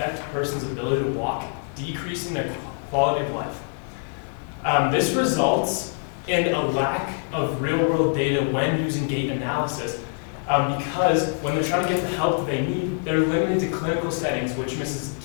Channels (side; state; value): right; silent; 56 dB below the other